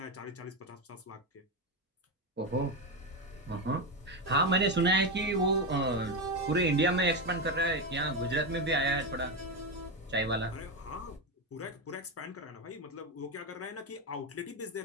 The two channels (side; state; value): both; normal; correlation 0.12